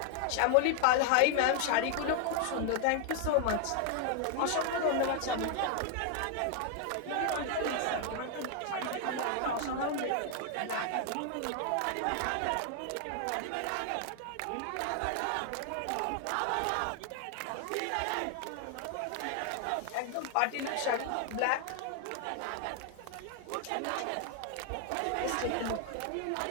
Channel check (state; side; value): different; both; correlation 0.00